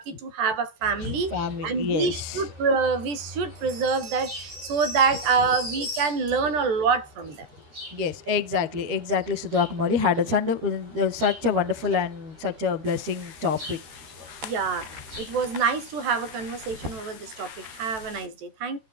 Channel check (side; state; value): left; late; 14 ms